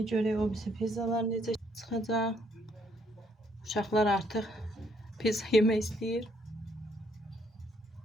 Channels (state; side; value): normal; both; correlation 0.69